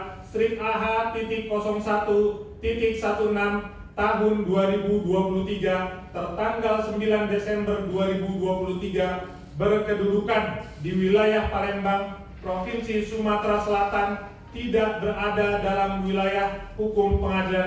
strip AH.01.16 tahun 2023 tertanggal 9 Desember 2023 berkedudukan di wilayah Palembang, Provinsi Sumatera Selatan, tidak berada dalam wilayah hukum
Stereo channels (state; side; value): identical; both; correlation 1.00